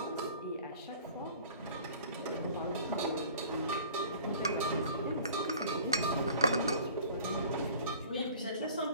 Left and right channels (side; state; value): both; inverted; correlation -0.47